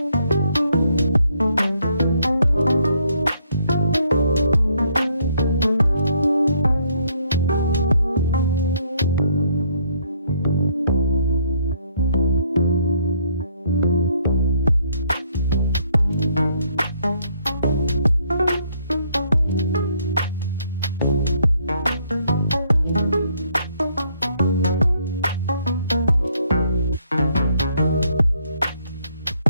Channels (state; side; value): inverted; both; correlation -0.69